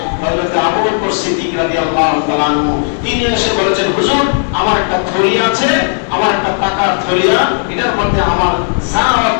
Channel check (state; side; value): silent; right; digital silence